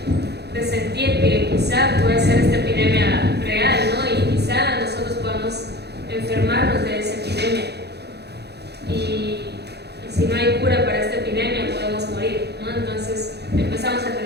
presentir que quizá puede ser esta epidemia real, ¿no? Y quizá nosotros podamos enfermarnos de esa epidemia. Y si no hay cura para esta epidemia, podemos morir, ¿no? Entonces empezamos a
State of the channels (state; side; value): late; left; 0.48 ms